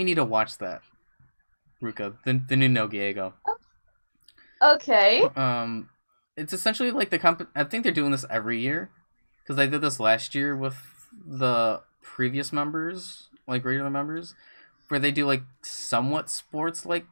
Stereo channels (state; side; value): inverted; both; correlation -1.00